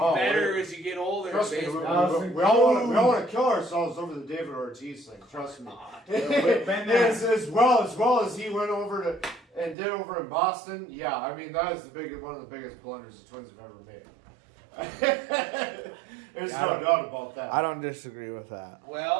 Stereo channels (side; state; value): left; drops out; at 9.8 s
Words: as you get older. Trust me, we baseball. all want to kill ourselves over the David Ortiz thing. Trust me. as well as he went over to and did over in Boston. Yeah, I mean that is one of the biggest blunders the Twins have ever made. There's no doubt about that. I don't disagree with that.